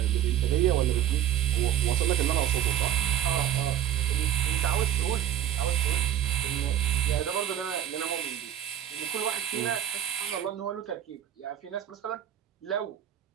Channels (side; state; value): left; quieter; 10.9 dB